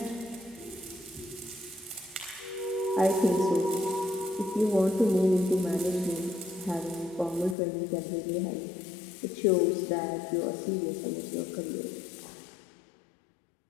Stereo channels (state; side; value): drops out; right; at 7.6 s